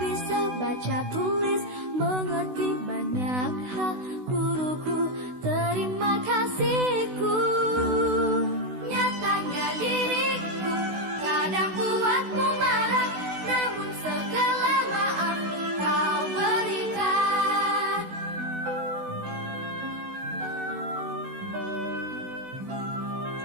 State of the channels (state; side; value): late; left; 16 ms